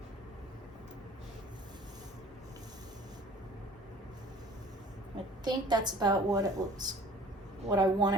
I think that's about what it looks, what I want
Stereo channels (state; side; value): normal; both; correlation 0.49